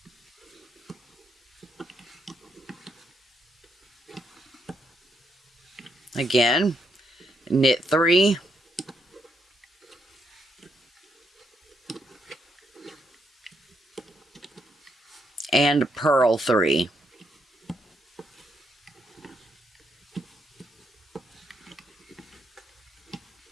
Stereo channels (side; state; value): both; normal; correlation 0.78